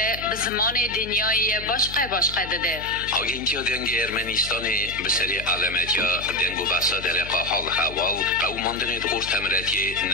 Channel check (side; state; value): left; noise; hum, 13 dB below the sound